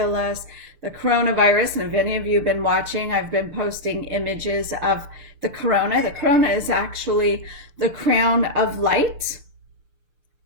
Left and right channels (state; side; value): late; left; 6.7 ms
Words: us, the coronavirus. And if any of you have been watching, I've been posting images of the corona. The corona is actually the crown of light